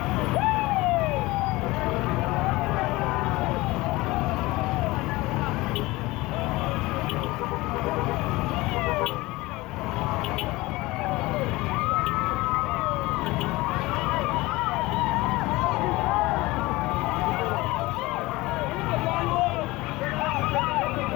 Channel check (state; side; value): quieter; right; 20.7 dB